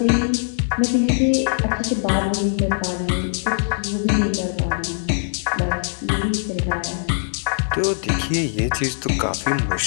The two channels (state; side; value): silent; right; digital silence